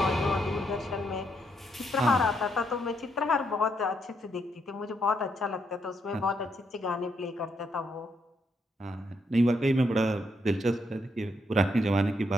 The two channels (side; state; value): both; normal; correlation 0.77